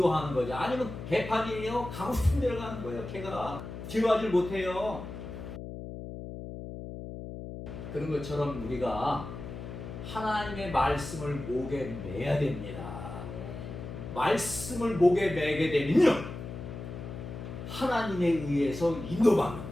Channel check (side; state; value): left; noise; hum, 9 dB below the sound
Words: 거죠. 아니면 개판이에요. 가고 싶은 데로 가는 거예요. 개가 제어하지 못해요. 그런 것처럼 우리가 하나님의 말씀을 목에 매야 됩니다. 말씀을 목에 매게 되면요 하나님에 의해서 인도받는